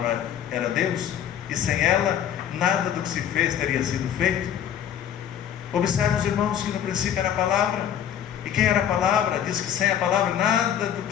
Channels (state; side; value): quieter; right; 9.6 dB